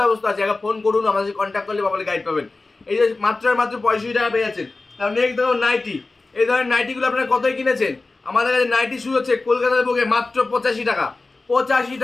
ব্যবস্থা আছে। একবার ফোন করুন, আমাদের কন্ট্যাক্ট করলে পাবলে গাইড পাবেন। এই যে মাত্র মাত্র 65 টাকা পেয়ে যাচ্ছেন। তার নেক্সট দেখুন নাইটি, এই ধরনের নাইটিগুলো আপনারা কতই কিনেছেন? আমাদের কাছে নাইটি শুরু হচ্ছে কলকাতার বুকে মাত্র 85 টাকা। 85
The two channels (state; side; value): quieter; right; 3.4 dB